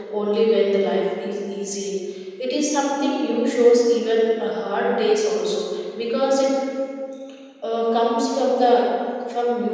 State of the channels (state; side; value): identical; both; correlation 1.00